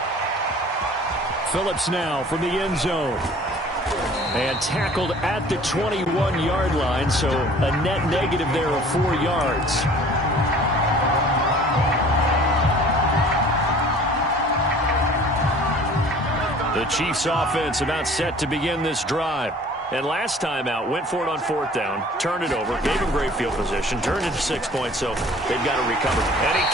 Phillips now from the end zone. And tackled at the 21-yard line, so a net negative there of 4 yards. The Chiefs offense about set to begin this drive. And last time out, went for it on fourth down, turned it over, gave him great field position, turned it to 6 points, so they've got to recover. And he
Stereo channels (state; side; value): normal; both; correlation 0.49